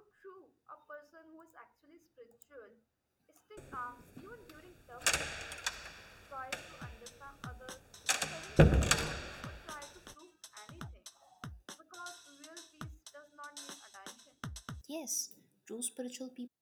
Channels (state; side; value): identical; both; correlation 1.00